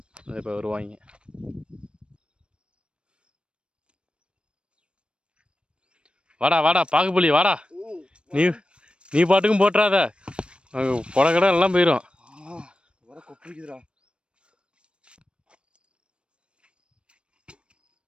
அதை இப்போ வருவாங்க. வாடா வாடா பாகுபலி வாடா, நீ பாட்டுக்கும் போட்டுறாத, கொடை கடை எல்லாம் போயிடும்.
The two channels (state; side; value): late; left; 0.057 ms